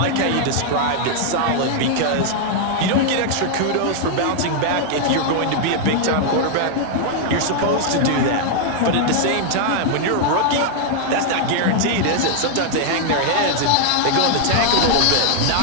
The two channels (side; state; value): both; different; correlation 0.00